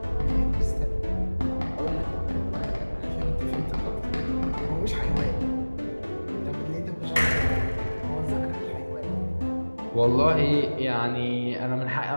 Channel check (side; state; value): both; inverted; correlation -1.00